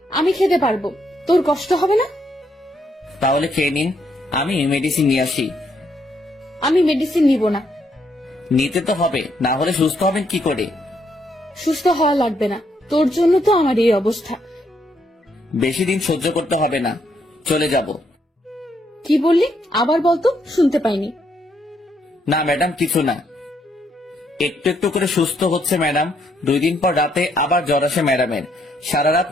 আমি খেতে পারবো, তোর কষ্ট হবে না। তাহলে খেয়ে নিন, আমি মেডিসিন নিয়ে আসি। আমি মেডিসিন নিব না। নিতে তো হবে, না হলে সুস্থ হবেন কি করে? সুস্থ হওয়া লাগবে না, তোর জন্য তো আমার এই অবস্থা। বেশি দিন সহ্য করতে হবে না, চলে যাব। কি বললি আবার বলতো, শুনতে পাইনি। না ম্যাডাম কিছু না, একটু একটু করে সুস্থ হচ্ছে ম্যাডাম। 2 দিন পর রাতে আবার জ্বর আসে ম্যাডামের। সারা রাত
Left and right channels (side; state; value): both; normal; correlation 0.74